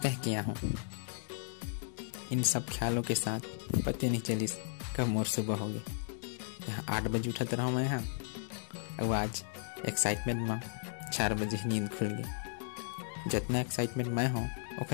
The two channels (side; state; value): right; silent; digital silence